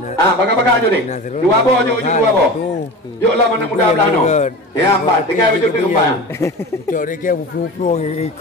Baga-baga aja ni. Dua bo. Yuk lah mana muda belah no. Ya, empat. Tinggal baju tu kembang. Cok dia kira pulang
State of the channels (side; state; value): both; normal; correlation 0.32